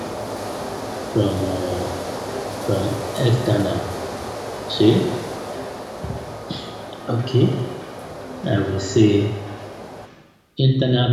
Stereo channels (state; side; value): identical; both; correlation 1.00